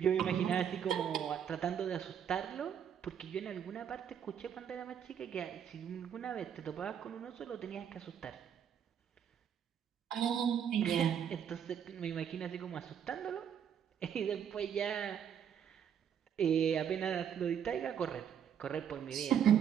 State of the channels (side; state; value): left; quieter; 8.5 dB